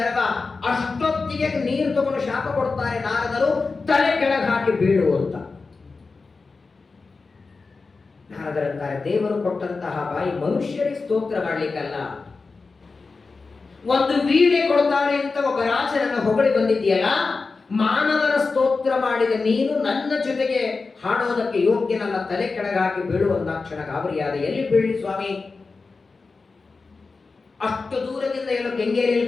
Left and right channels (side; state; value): right; quieter; 4.2 dB